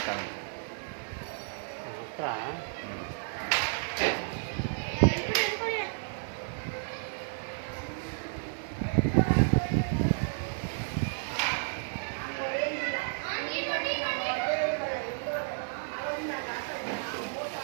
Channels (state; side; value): silent; left; digital silence